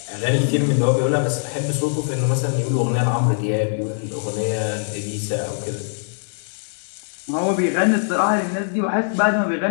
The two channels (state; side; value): silent; right; 62 dB below the other